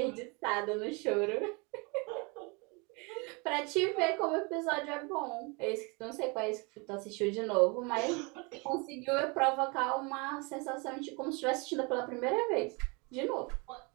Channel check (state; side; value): quieter; left; 30.0 dB